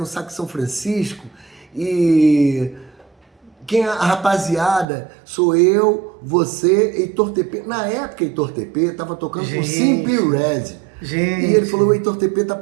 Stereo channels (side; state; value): left; drops out; at 4.9 s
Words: Saco São Francisco e a rapaziada sou eu, você, Heitor TP. Na época, Heitor TP tava tocando com Simple Red. Gente. E ele falou, o Heitor TP tá